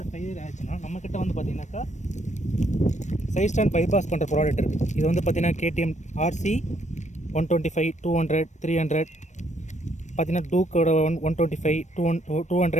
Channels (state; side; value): late; right; 0.34 ms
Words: ஃபெயிலியர் ஆயிடுச்சுன்னா நம்மக்கிட்ட வந்து பார்த்தீங்கன்னாக்கா சைட் ஸ்டாண்ட் பைபாஸ் பண்ணுற ப்ராடக்ட் இருக்குது. இது வந்து பார்த்தீங்கன்னா KTM RC 125, 200, 300 பார்த்தீங்கன்னா டூக்கோட 125, 200,